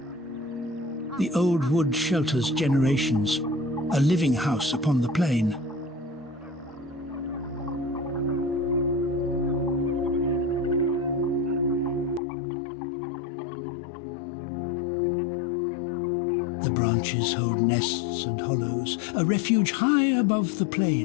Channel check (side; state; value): right; drops out; at 12.2 s